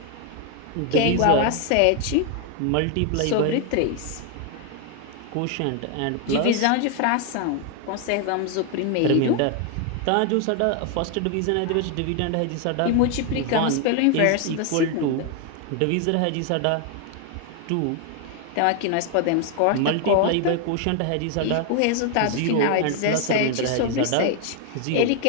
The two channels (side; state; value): both; different; correlation 0.01